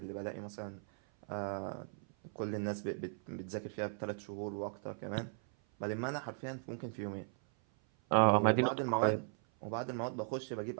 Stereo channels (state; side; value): silent; left; 53 dB below the other